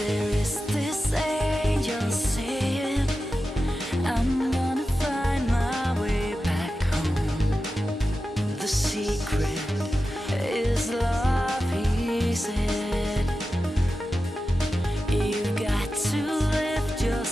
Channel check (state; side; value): normal; both; correlation 0.92